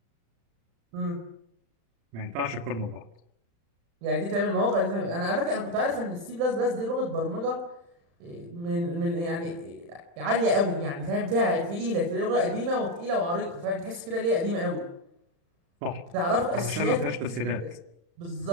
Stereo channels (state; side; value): late; left; 35 ms